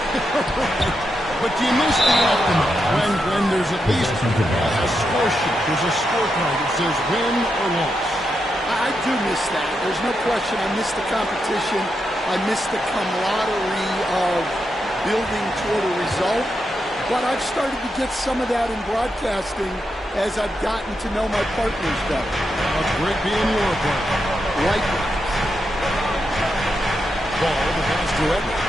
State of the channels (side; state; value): both; normal; correlation 0.85